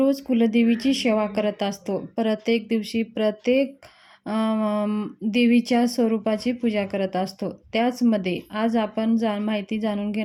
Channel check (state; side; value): identical; both; correlation 1.00